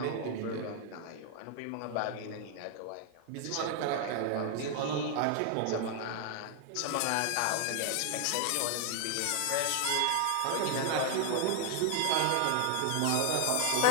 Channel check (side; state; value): both; different; correlation 0.00